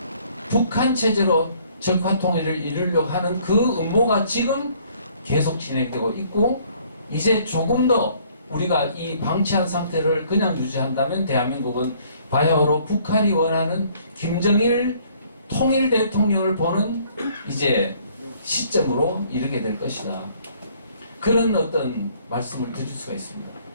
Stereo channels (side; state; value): both; inverted; correlation -0.60